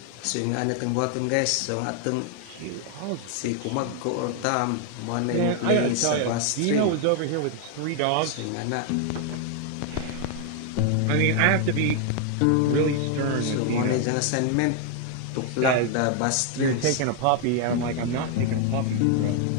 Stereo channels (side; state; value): both; different; correlation 0.00